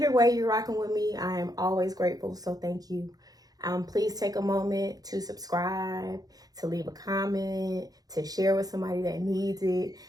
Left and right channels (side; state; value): left; late; 0.18 ms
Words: way you're rocking with me, I am always grateful. So thank you. Please take a moment to subscribe, to leave a comment, to share with somebody that needs it.